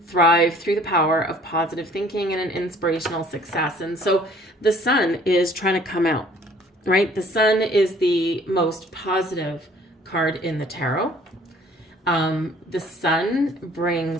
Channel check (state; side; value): normal; both; correlation 0.55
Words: Thrive through the power of positive thinking and an inspirational success. And so the Sun is trying to come out, right? The Sun is the most positive card in the tarot. The Sun